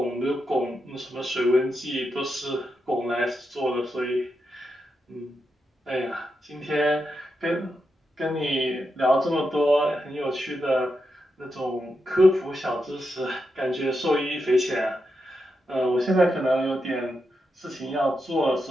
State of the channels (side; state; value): both; normal; correlation 0.86